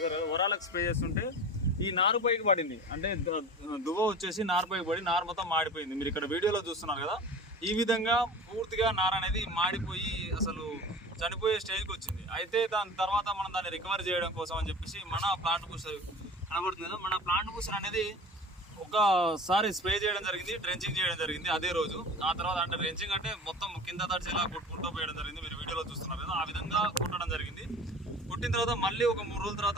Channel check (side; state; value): both; normal; correlation 0.37